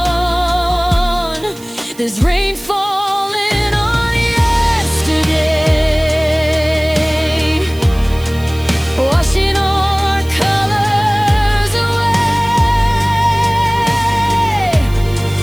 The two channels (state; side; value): noise; right; hiss, 21 dB below the sound